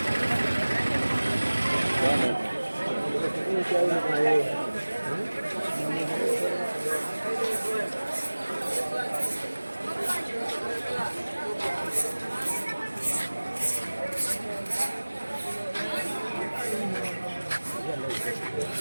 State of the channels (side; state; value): both; inverted; correlation -1.00